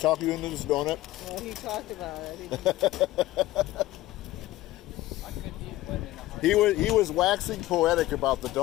you into this donut? Well, he talked about it. He was waxing poetic about the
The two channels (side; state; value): right; quieter; 16.6 dB